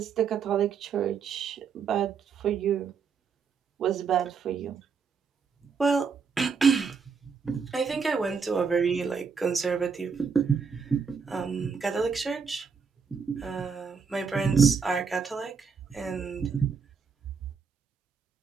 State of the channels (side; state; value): left; quieter; 5.8 dB